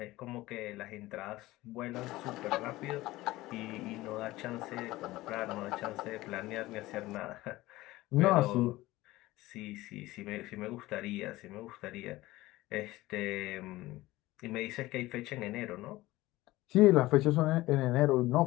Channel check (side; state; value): right; quieter; 18.2 dB